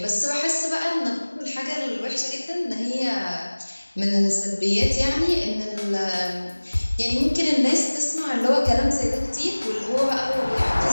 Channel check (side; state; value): both; inverted; correlation -1.00